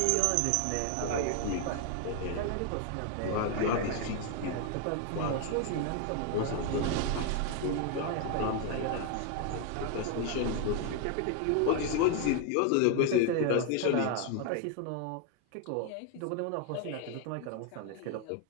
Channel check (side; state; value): both; different; correlation 0.01